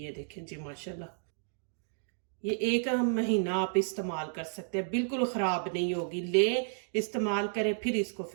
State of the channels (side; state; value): left; silent; digital silence